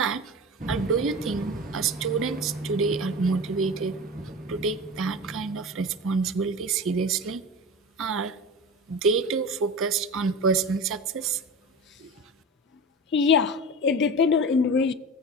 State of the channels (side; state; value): both; normal; correlation 0.31